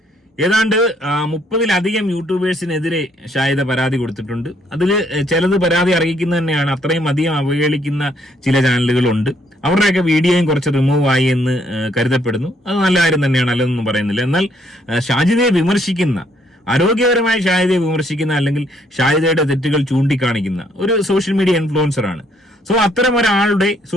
ഏതാണ്ട് 30-ലധികം യൂട്യൂബേഴ്സിനെതിരെ ഷാജിദ പരാതി കൊടുത്തിട്ടുണ്ട്. അതിൽ ചിലത് പരാതി അറിയിക്കുന്നത് തന്നെയാണ്. അത്രയും അധികം അവഹേളിക്കുന്ന ചില ചാനലുകളുണ്ട്. അവരുടെയൊക്കെ വീഡിയോയും കുറച്ച് റിമൂവ് ആയി എന്ന് കരുതപ്പെടുന്നു. അത് നല്ല കാര്യം തന്നെയാണ്, അല്ലെന്നൊന്നും പറയുന്നില്ല. എന്നാൽ ഷാജിദയെ വിമർശിക്കുന്ന, ആരോഗ്യപരമായി ഷാജിദയെ വിമർശിക്കുന്ന അല്ലെങ്കിൽ ഷാജിദയുടെ തെറ്റുകൾ ചൂണ്ടിക്കാണിക്കുന്ന ഒരു സോഷ്യൽ മീഡിയ ഇൻഫ്ലുവൻസറാണ്. സോ അത്തരം ഒരാളുടെ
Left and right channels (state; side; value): normal; both; correlation 0.68